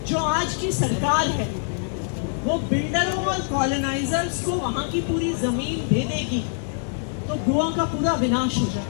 जो आज की सरकार है वो बिल्डरों और कॉलोनाइजर्स को वहाँ की पूरी जमीन दे देगी तो गोवा का पूरा विनाश हो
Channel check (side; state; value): right; silent; 62 dB below the other